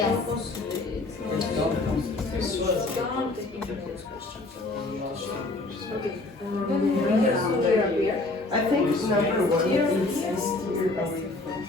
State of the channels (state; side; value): quieter; right; 3.0 dB